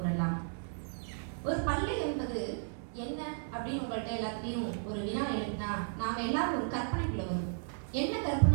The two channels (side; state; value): left; silent; digital silence